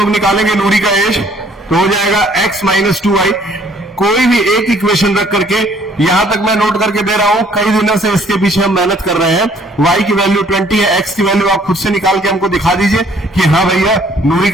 निकालेंगे नूरी का एज, तो हो जाएगा x माइनस 2y। कोई भी एक इक्वेशन रख करके, यहां तक मैं नोट करके दे रहा हूं, कई दिनों से इसके पीछे हम मेहनत कर रहे हैं। y की वैल्यू 20 है, x की वैल्यू आप खुद से निकाल के हमको दिखा दीजिए कि हाँ भैया नूरी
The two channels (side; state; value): both; normal; correlation 0.60